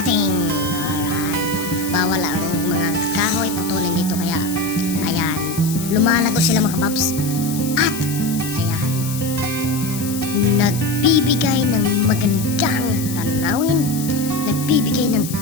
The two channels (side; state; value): left; noise; hiss, 9 dB below the sound